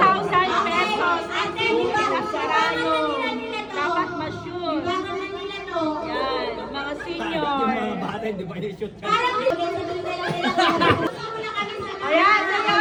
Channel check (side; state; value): both; identical; correlation 1.00